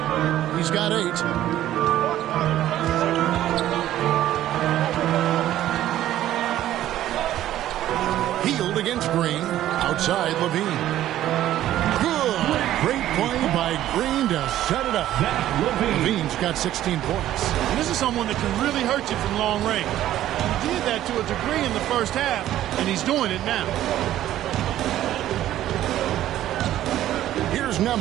He's got 8. Hield against Green. Outside Levine. Good. Great play by Green to set it up. Levine's got 16 points. And this is someone that can really hurt you from long range. He did that to a degree in the first half, and he's doing it now. Here's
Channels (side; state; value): left; quieter; 13.0 dB